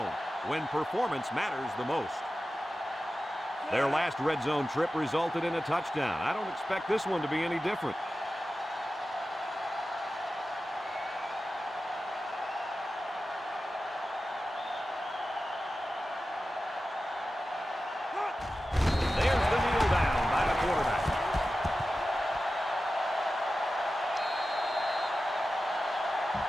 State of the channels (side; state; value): both; normal; correlation 0.94